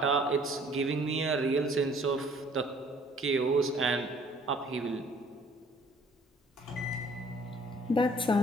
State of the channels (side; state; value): both; normal; correlation 0.57